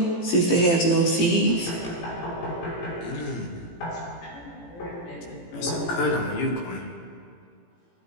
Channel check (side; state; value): right; late; 18 ms